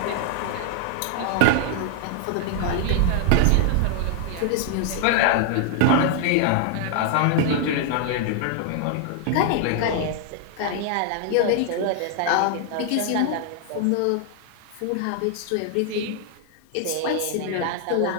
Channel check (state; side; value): different; both; correlation 0.00